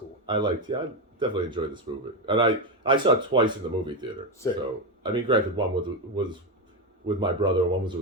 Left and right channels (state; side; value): normal; both; correlation 0.10